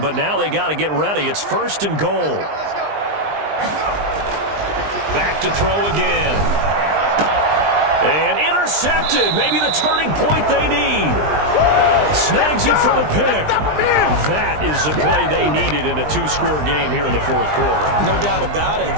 but now they got to get ready. It's 1st and goal. Back to throw again. And intercepted. Maybe the turning point they need. Snags it for the pick. That is the play they needed in a two-score game here in the fourth quarter. No doubt about it.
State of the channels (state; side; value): late; left; 20 ms